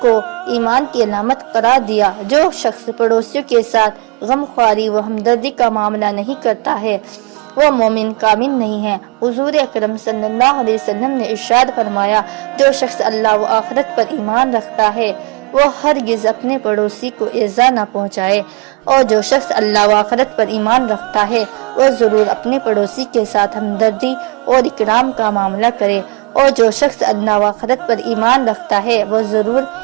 کو ایمان کی علامت قرار دیا۔ جو شخص پڑوسیوں کے ساتھ غم خواری و ہمدردی کا معاملہ نہیں کرتا ہے وہ مومن کامل نہیں ہے۔ حضور اکرم صلی اللہ علیہ وسلم نے ارشاد فرمایا، جو شخص اللہ و آخرت پر ایمان رکھتا ہے وہ ہرگز اپنے پڑوسی کو ایذا نہ پہنچائے، اور جو شخص اللہ و آخرت پر ایمان رکھتا ہے وہ ضرور اپنے پڑوسی کے ساتھ ہمدردی اور اکرام کا معاملہ کرے، اور جو شخص اللہ و آخرت پر ایمان رکھتا ہے وہ ضرور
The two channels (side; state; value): left; quieter; 29.7 dB